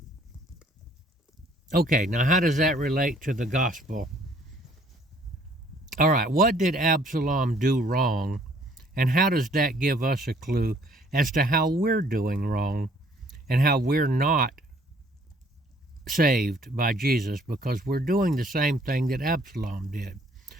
Okay, now how does that relate to the gospel? All right, what did Absalom do wrong, and how does that give us a clue as to how we're doing wrong and how we're not saved by Jesus, because we're doing the same thing that Absalom did?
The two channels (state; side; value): normal; both; correlation 0.60